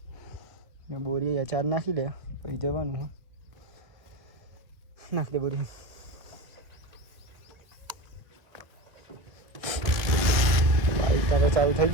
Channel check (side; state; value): left; late; 1.9 ms